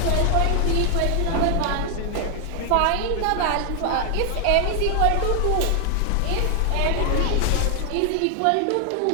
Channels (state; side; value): different; both; correlation 0.00